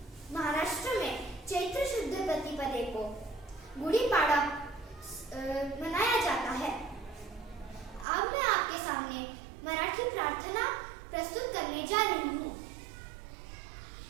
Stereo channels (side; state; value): left; drops out; at 8.1 s